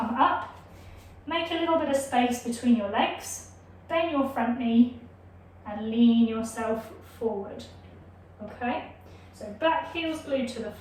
up. Make a little bit of space between your legs, bend your front knee and lean yourself forward, okay? So back heel's glued to the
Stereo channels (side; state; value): both; identical; correlation 1.00